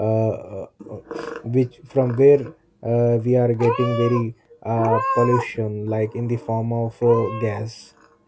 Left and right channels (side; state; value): both; identical; correlation 1.00